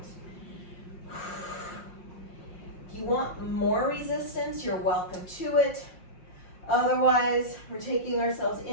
If you want more resistance, you're welcome to it. Otherwise, we're taking ourselves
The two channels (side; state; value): right; late; 5.6 ms